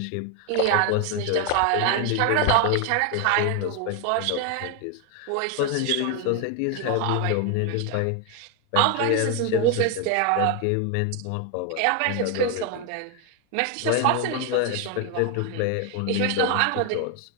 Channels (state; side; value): different; both; correlation 0.01